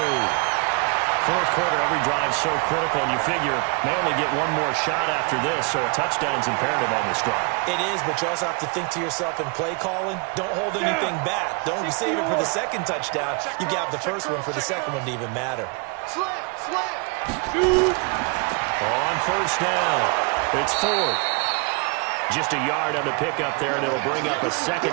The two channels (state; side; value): quieter; left; 33.4 dB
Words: 4th quarter, every drive so critical, and you figure may only get 1 more shot after this, so a touchdown's imperative on this drive. It is, but you also have to think to yourself in play calling, don't hold anything back. Don't save it for the 2nd touchdown. You got the 1st one for the 2nd one to even matter. Slam. On 1st down, it's Ford. Just a yard on the pickup there, and it'll bring up a